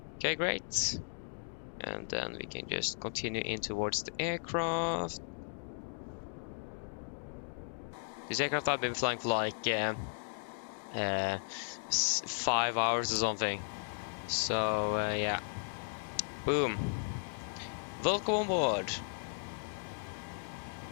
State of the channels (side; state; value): right; silent; digital silence